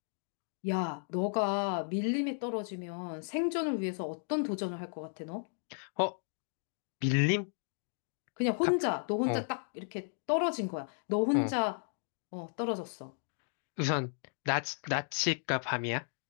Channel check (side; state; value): right; silent; 55 dB below the other